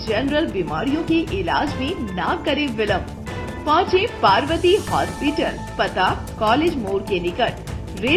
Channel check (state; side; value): identical; both; correlation 1.00